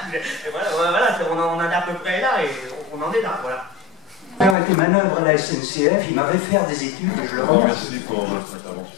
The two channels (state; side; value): drops out; right; at 4.5 s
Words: Et voilà, on en est à peu près là et on en est là, voilà. Permettez manœuvre à la SNCF, il m'avait fait des études et je le rends. Merci pour votre